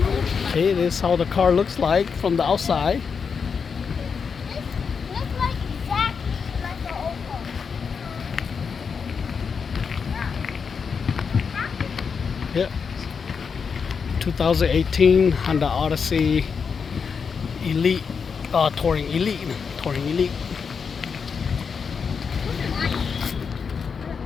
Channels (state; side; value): quieter; right; 5.9 dB